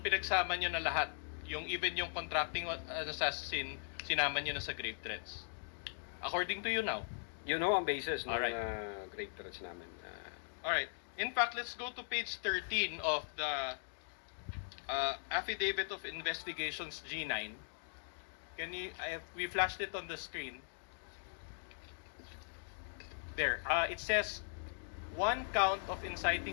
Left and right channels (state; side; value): silent; right; digital silence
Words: pinagsama nyo na lahat. Even yung contracting assassin, sinama nyo na sa grave threats. According to you now. You know ang basis ng Alright. grave threats namin. Alright. In fact, let's go to page 13 of the Affidavit of Investigations G9. We flashed it on the screen. There. It says 1 count of